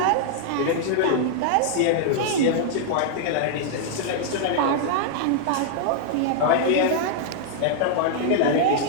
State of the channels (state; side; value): different; both; correlation -0.01